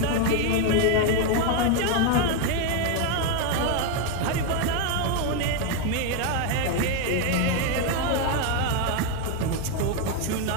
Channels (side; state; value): both; different; correlation 0.01